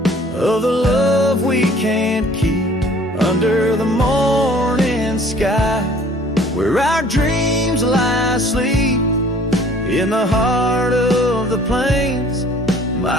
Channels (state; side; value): normal; both; correlation 0.54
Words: the love we can't keep. Under the morning sky, where our dreams lie asleep, in the heart of the plains,